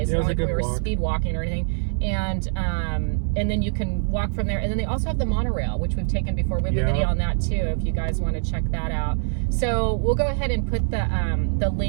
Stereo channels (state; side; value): silent; left; 63 dB below the other